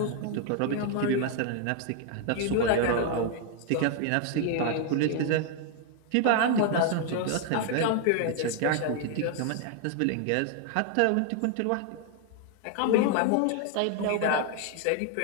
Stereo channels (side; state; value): both; different; correlation 0.00